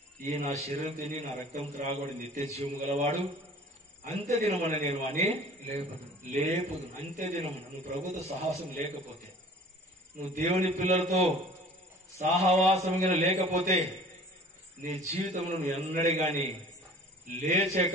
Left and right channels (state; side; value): normal; both; correlation 0.47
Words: ఈ నా శరీరం తిని నా రక్తం త్రాగబడి నిత్య జీవము గలవాడు అంత్య దినమన నేను అని లేపుదు. అంత్య దినమున నువ్వు ప్రభుత్వ సాహసం లేకపోతే, నువ్వు దేవుని పిల్లలతో సాహవాసం లేకపోతే నీ జీవితంలో నువ్వు ఎన్నడే గాని